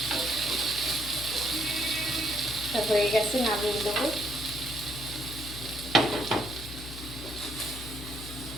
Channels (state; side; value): noise; left; hum, 11 dB below the sound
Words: হয়ে গেছে, নামিয়ে দেবো।